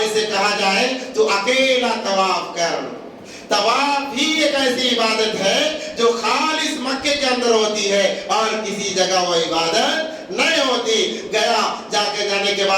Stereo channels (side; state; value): both; identical; correlation 1.00